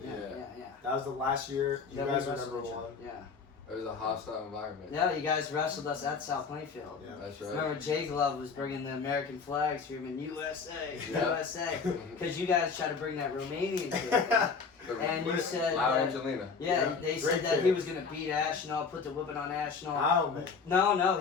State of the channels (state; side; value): quieter; right; 5.2 dB